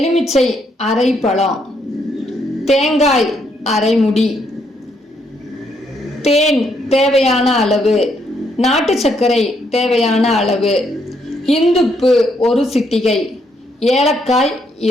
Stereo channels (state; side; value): normal; both; correlation 0.74